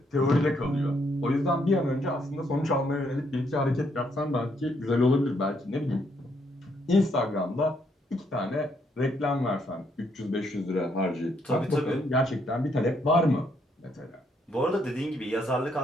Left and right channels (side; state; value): both; normal; correlation 0.73